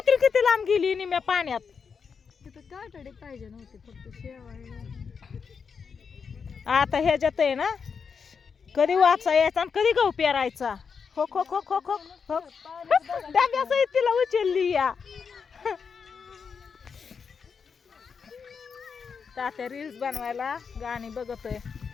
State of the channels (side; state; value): right; quieter; 6.0 dB